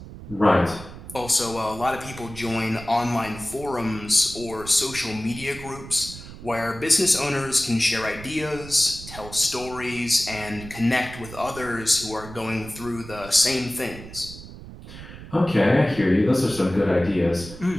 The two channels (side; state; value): right; noise; rumble, 14 dB below the sound